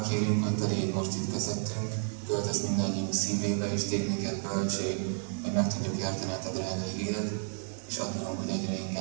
kérünk, hogy te légy most itt közöttünk, költöz mindannyiunk szívébe, és tégy minket bölcség, hogy meg tudjuk érteni a te drága igédet, és adunk, hogy egyre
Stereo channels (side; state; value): left; silent; 57 dB below the other